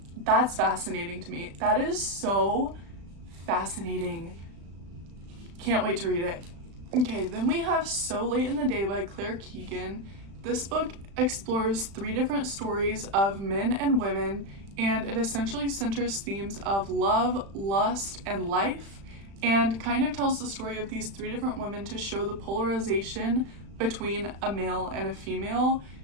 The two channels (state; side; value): late; left; 35 ms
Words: That's fascinating to me. That is so fascinating. Can't wait to read it. Okay, then we have So Late in the Day by Claire Keegan. This book explores 3 different stories of men and women, and it essentially centers themes of love, lust, and life, and kind of tells the story of these 3 different women to show the polarization between a male and a female,